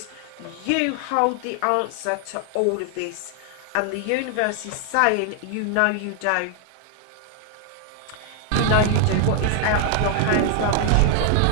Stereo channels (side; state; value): both; different; correlation 0.00